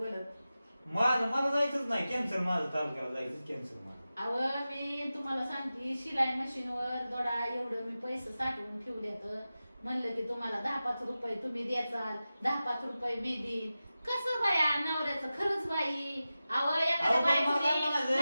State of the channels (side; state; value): both; inverted; correlation -0.94